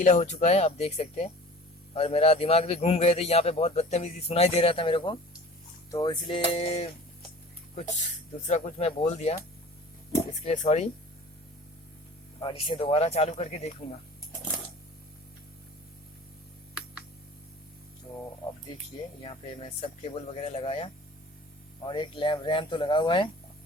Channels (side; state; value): both; normal; correlation 0.43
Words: हो चुका है, आप देख सकते हैं। और मेरा दिमाग भी घूम गए थे, यहाँ पे बहुत बदतमीजी सुनाई दे रहा था मेरे को, तो इसलिए कुछ दूसरा कुछ मैं बोल दिया, इसके लिए सॉरी। और इसे दोबारा चालू करके देखूंगा। तो अब देखिए यहाँ पे मैं सब केबल वगैरह लगाया और एक रैम तो लगा हुआ है